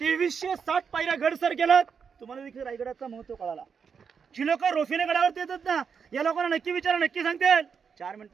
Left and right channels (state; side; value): quieter; left; 6.4 dB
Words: पायऱ्या गड सर केलात, तुम्हाला देखील रायगडाचा महत्व कळाला। जी लोक रोफीने गडावरती येतात ना, या लोकांना नक्की विचारा, नक्की सांगतील। 4